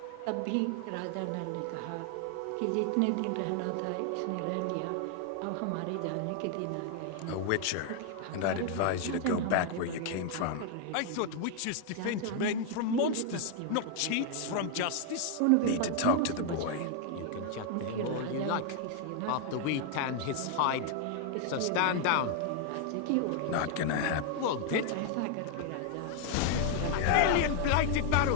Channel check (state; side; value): different; both; correlation 0.00